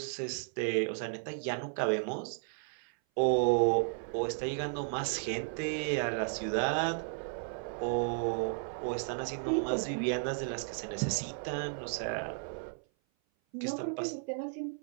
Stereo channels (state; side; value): silent; left; 55 dB below the other